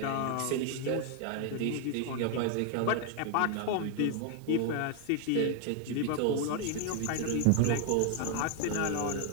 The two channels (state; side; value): different; both; correlation 0.00